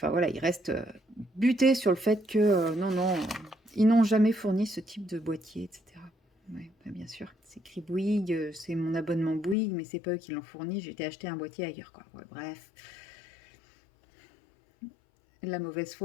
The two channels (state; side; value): drops out; right; at 9.6 s